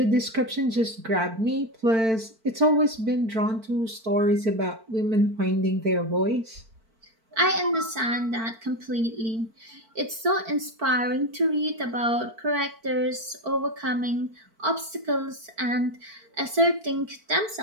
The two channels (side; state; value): left; late; 4.5 ms